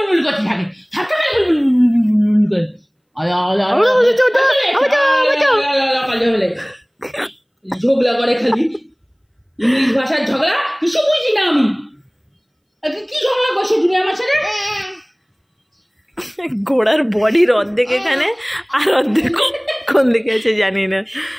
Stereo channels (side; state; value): both; identical; correlation 1.00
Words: করতে থাকে, ঝগড়া করে খালি ইংলিশ ভাষার ঝগড়া, কিছু বুঝি না আমি। কি ঝগড়া করছো তুমি আমার সাথে? ঘোড়ার বডির অর্ধেক এখানে আর অর্ধেক কোন দিকে আছে জানি না,